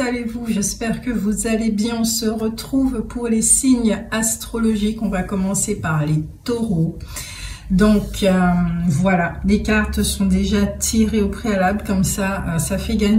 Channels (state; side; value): identical; both; correlation 1.00